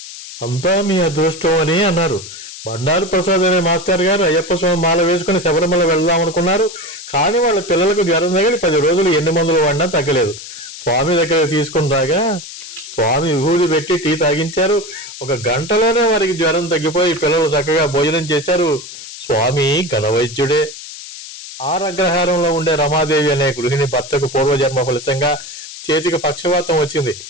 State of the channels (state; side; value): noise; left; hiss, 13 dB below the sound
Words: అంతా మీ అదృష్టం అని అన్నారు. బండారు ప్రసాద్ అనే మాస్టర్ గారు అయ్యప్ప స్వామి మాల వేసుకుని శబరిమల వెళ్దాం అనుకున్నారు. కానీ వాళ్ళ పిల్లలకు జ్వరం తగిలి 10 రోజులు ఎన్ని మందులు వాడినా తగ్గలేదు. స్వామి దగ్గర తీసుకుని రాగా స్వామి విభూతి పెట్టి టీ తాగించారు. 1 గంటలోనే వారికి జ్వరం తగ్గిపోయి పిల్లలు చక్కగా భోజనం చేశారు. స్వామి ఘనవైద్యుడే. ఆరగ్రహారంలో ఉండే రమాదేవి అనే గృహిణి భర్తకు పూర్వజన్మ ఫలితంగా చేతికి పక్షవాతం వచ్చింది.